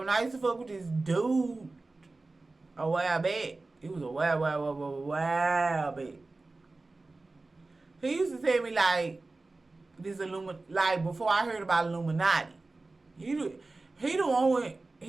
I used to fuck with this dude a while back, it was a while back. He used to tell me like this like before I heard about Illuminati. He the one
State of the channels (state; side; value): quieter; left; 3.4 dB